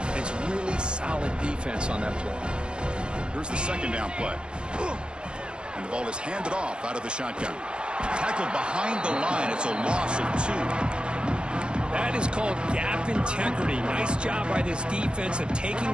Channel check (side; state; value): left; late; 0.049 ms